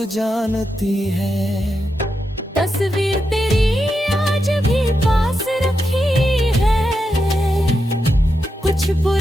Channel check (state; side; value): normal; both; correlation 0.86